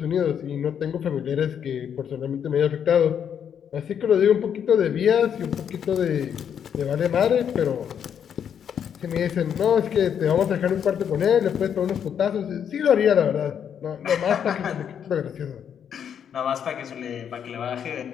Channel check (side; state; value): right; quieter; 8.3 dB